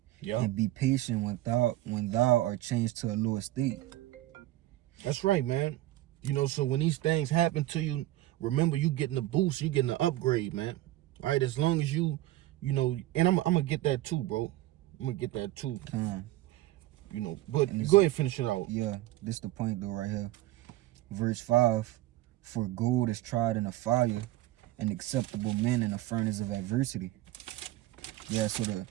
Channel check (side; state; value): left; quieter; 16.1 dB